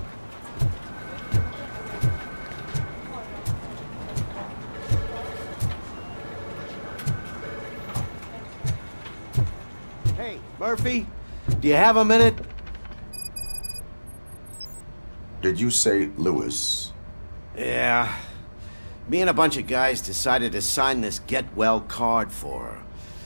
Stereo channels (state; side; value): inverted; both; correlation -1.00